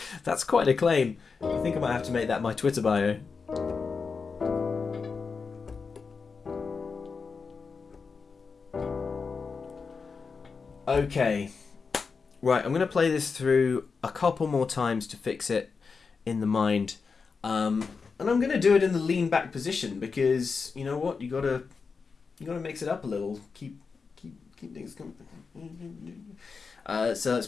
That's quite a claim. I think I might have to make that my Twitter bio. Okay. Right, I'm going to play this through a couple more times to fix it in the mind. And I'm going to do it in the lean back position because, you know what, you gotta mix it up a little. Keep things coming. So let's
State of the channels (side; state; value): right; quieter; 5.0 dB